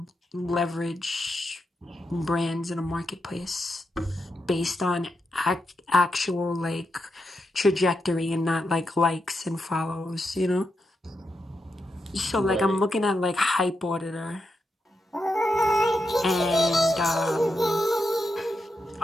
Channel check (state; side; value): normal; both; correlation 0.85